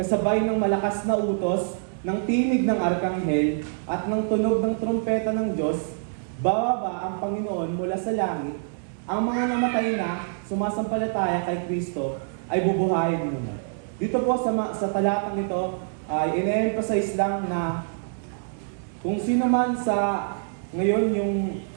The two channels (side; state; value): left; silent; digital silence